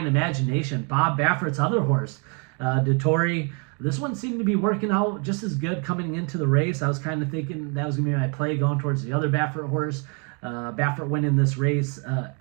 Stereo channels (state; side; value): quieter; left; 36.6 dB